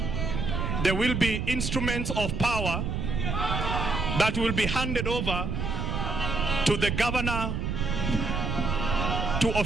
there will be instruments of power that will be handed over to the governor to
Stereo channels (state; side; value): noise; right; rumble, 1 dB below the sound